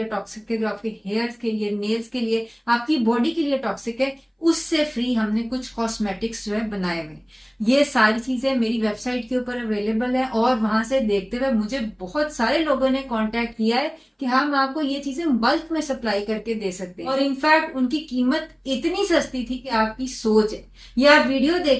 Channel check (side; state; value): both; identical; correlation 1.00